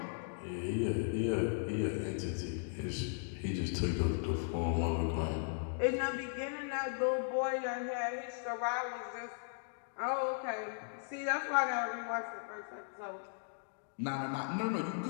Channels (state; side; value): silent; right; digital silence